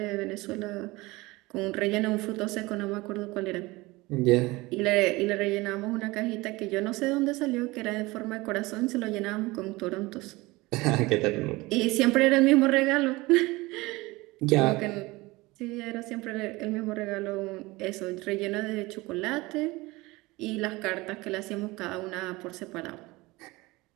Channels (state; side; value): quieter; left; 21.7 dB